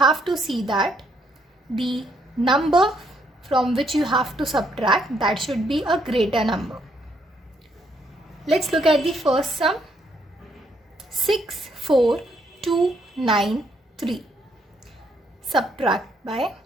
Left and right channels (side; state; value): both; normal; correlation 0.72